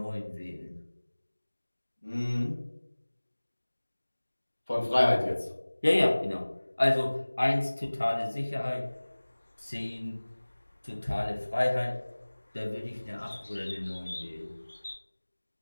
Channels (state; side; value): inverted; both; correlation -1.00